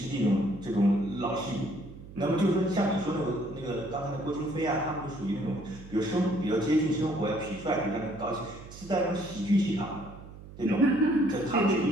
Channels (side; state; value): right; noise; hum, 16 dB below the sound